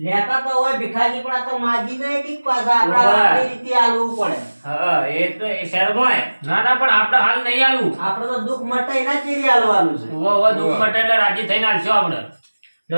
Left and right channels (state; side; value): inverted; both; correlation -1.00